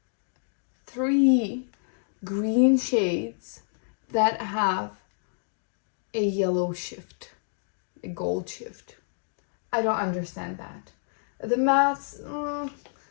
3 green shades that have a yellow shift, a gold shift? I don't understand that. The mattes,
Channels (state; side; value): silent; right; digital silence